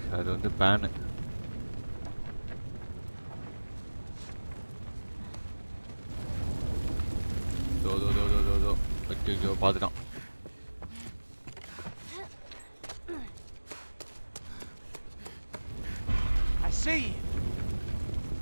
அது வந்து பேனு. தோ தோ தோ தோ தோ தோ ஐயோ பார்த்துட்டான். I see you.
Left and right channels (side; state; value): both; inverted; correlation -1.00